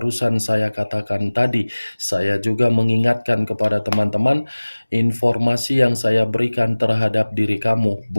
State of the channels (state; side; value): inverted; both; correlation -1.00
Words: saya katakan tadi, saya juga mengingatkan kepada teman-teman, informasi yang saya berikan terhadap diri kamu